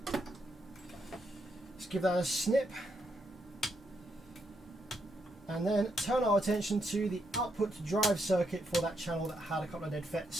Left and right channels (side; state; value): both; normal; correlation 0.79